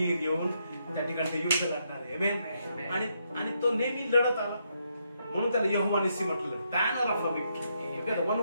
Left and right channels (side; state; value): both; inverted; correlation -0.78